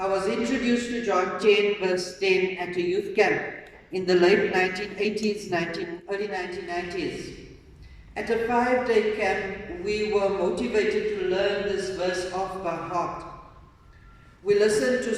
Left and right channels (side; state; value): both; identical; correlation 1.00